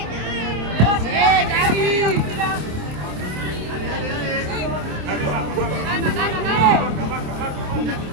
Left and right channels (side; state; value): left; late; 27 ms